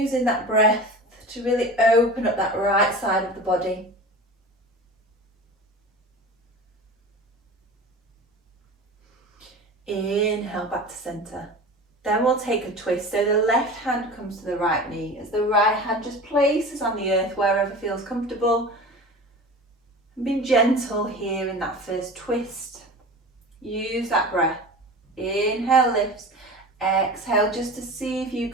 that breath to really open up that right side of the body. Inhale back to centre. Then we'll take a twist. So the left hand comes to the right knee as the right hand just places on the earth wherever feels comfortable. And be gentle here in that first twist. Use that breath. Inhale lifts. Exhale just to see if you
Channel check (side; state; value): both; normal; correlation 0.35